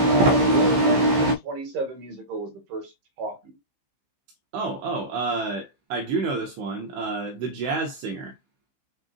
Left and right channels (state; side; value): late; left; 15 ms